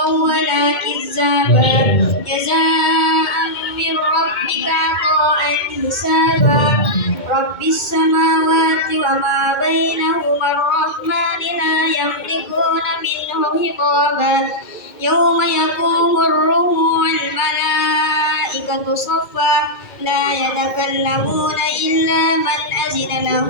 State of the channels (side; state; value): right; late; 2.2 ms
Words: wa la kizzaba jazaa'an min rabbika 'ata'an hisaba rabbis samawati wa ma bainahuma ar-rahmani la yamlikuna minhu hitaba yawma yaqumur ruhu wal malaikatu saffa la yatakallamuna illa man azina lahu